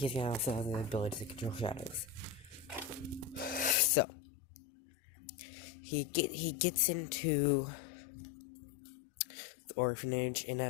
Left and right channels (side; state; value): right; drops out; at 3.8 s